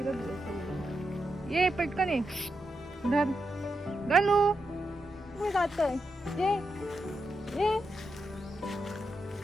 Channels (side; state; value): both; normal; correlation 0.85